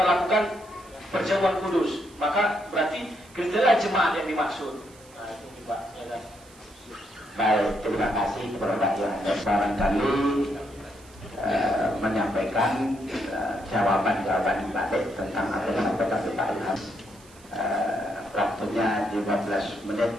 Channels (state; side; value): noise; right; hiss, 25 dB below the sound